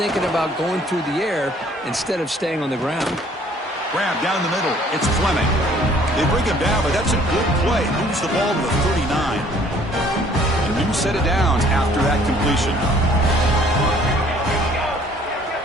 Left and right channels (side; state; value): both; normal; correlation 0.58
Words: about going through the air instead of staying on the ground. Grab down the middle. It's Fleming. They bring him down, but that's a good play. Moves the ball to the 39. A new set of downs after that completion.